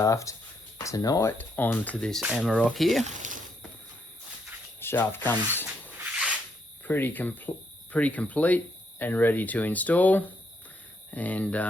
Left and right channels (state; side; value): normal; both; correlation 0.75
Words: tonight onto this Amarock here. Shaft comes pretty complete and ready to install, and